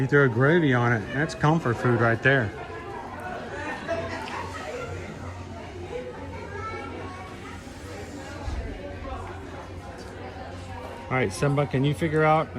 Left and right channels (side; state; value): both; identical; correlation 1.00